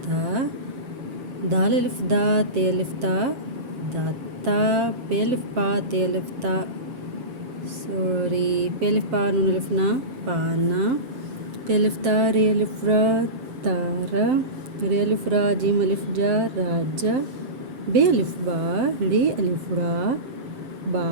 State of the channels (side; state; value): left; late; 7.6 ms